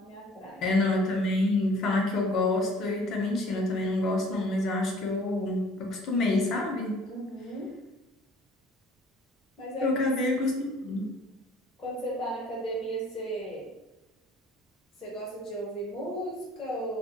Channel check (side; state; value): both; normal; correlation 0.54